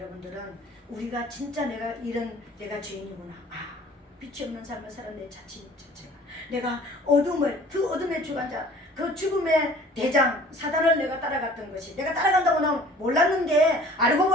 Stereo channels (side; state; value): both; normal; correlation 0.50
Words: 우리가 진짜 내가 죄인이구나. 빛이 없는 삶을 살은 내 자체가 내가 그 어둠의 주관자, 그 죽음의 대장 사단을 내가 따라갔던 것이, 내가 따라간다고 난 몰랐는데 알고